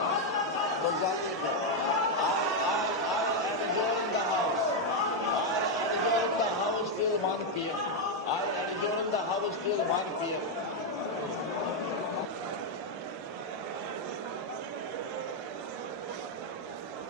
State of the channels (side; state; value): both; normal; correlation 0.01